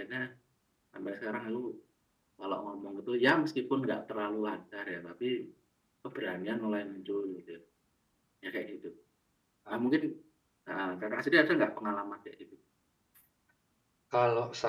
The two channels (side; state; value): both; identical; correlation 1.00